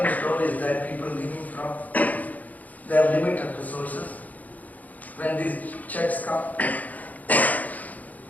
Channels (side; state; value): right; late; 0.078 ms